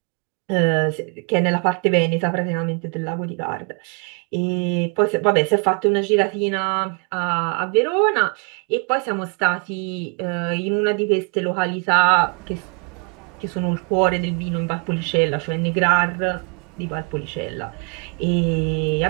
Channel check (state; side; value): quieter; left; 36.9 dB